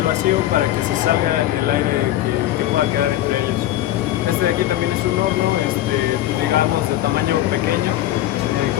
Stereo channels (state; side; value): quieter; right; 13.9 dB